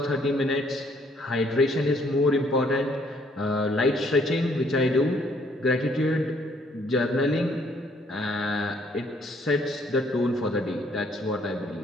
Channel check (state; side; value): normal; both; correlation 0.65